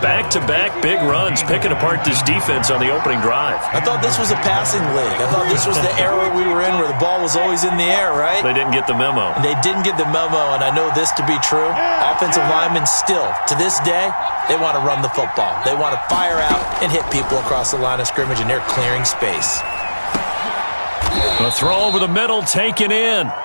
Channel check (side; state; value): both; inverted; correlation -1.00